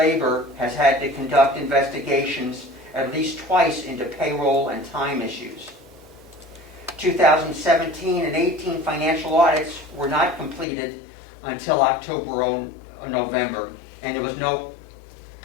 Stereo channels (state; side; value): drops out; right; at 10.7 s